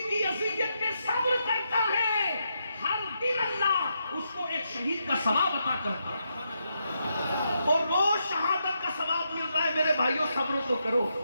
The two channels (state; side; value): inverted; both; correlation -0.82